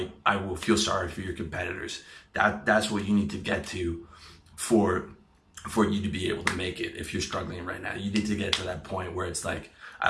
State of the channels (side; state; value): both; identical; correlation 1.00